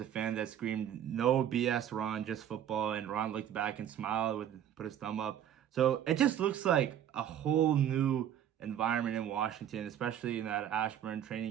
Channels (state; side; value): quieter; left; 10.3 dB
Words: a fan that screamed, "No BS, Ron, just football." And Ron looked back and smiled, put his thumb up. So it just looks like a whole new environment in Washington, especially in that Ashburn